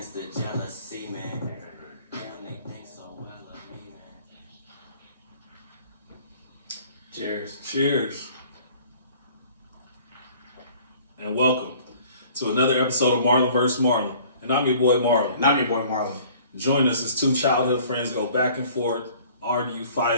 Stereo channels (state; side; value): inverted; both; correlation -0.53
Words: the jealousy, man. Damn, they think so well of me, man. Cheers. Cheers. And welcome to another episode of Marlon vs. Marlon. And I'm your boy Marlon. And I'm your boy Marlon. Join us as two childhood friends go back and forth, argue,